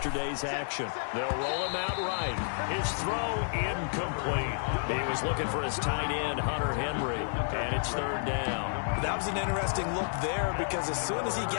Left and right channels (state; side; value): silent; right; digital silence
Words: action. They'll roll him out right. His throw incomplete. He was looking for his tight end, Hunter Henry, and it's third down. That was an interesting look there because as soon as he